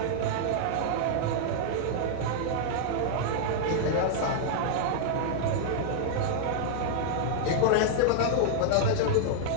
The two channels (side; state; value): both; different; correlation -0.01